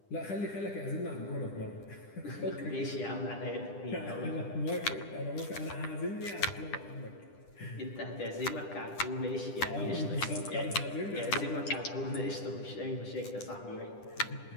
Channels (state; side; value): late; right; 10 ms